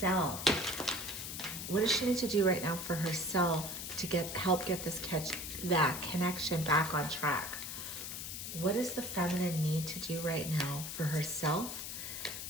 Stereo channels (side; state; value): left; noise; hiss, 6 dB below the sound